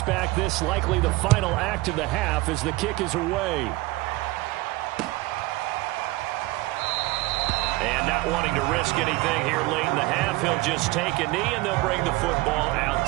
this likely the final act of the half as the kick is away. And not wanting to risk anything here late in the half, he'll just take a knee and they'll bring the football out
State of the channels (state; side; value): quieter; left; 20.5 dB